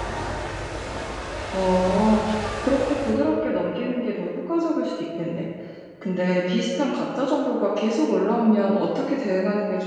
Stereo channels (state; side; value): identical; both; correlation 1.00